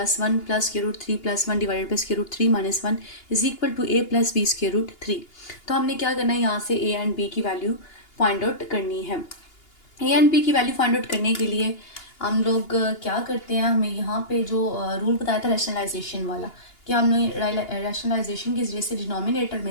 1 plus square root 3 plus 1 divide by square root 3 minus 1 is equal to A plus B square root 3। तो हमने क्या करना है, यहाँ से ए एंड बी की वैल्यू फाइंड आउट करनी है। ए एंड बी की वैल्यू फाइंड आउट करने के लिए हम लोग क्या करते हैं, हमें यहाँ पे जो रूल बताया था रैशनलाइजेशन वाला, कि हमने रैशनलाइजेशन के जरिए से डिनोमिनेटर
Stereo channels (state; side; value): late; right; 2.8 ms